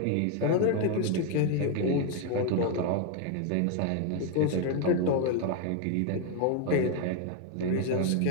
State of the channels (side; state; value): both; different; correlation 0.01